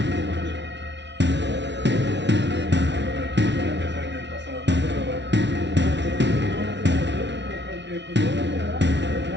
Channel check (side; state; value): left; late; 0.51 ms